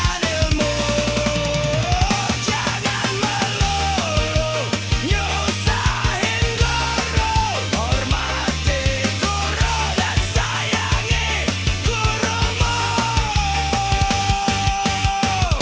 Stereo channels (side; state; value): both; identical; correlation 1.00